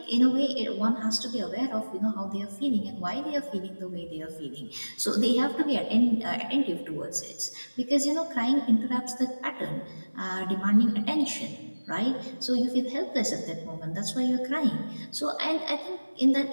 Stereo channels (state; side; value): inverted; both; correlation -1.00